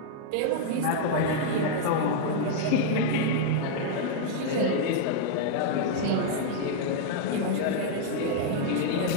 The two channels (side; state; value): both; different; correlation -0.01